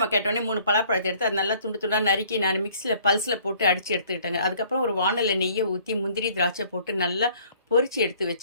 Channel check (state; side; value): inverted; both; correlation -0.57